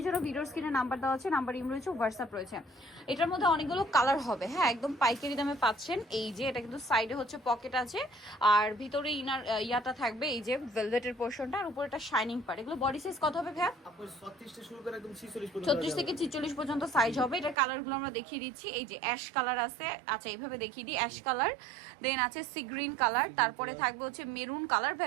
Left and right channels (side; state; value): left; drops out; at 17.6 s